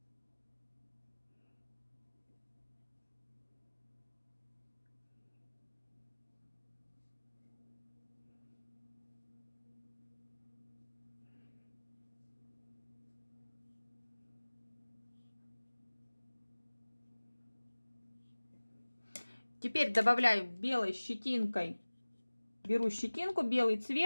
Теперь добавляю белой щетинкой. Беру щетинку, белый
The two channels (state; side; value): inverted; both; correlation -1.00